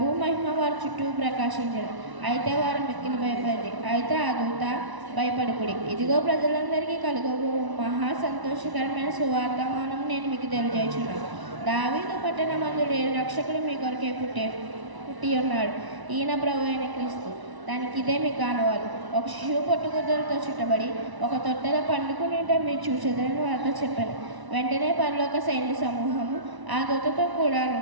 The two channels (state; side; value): late; left; 1.0 ms